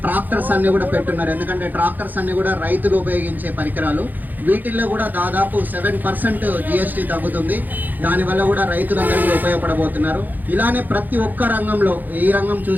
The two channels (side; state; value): left; late; 0.085 ms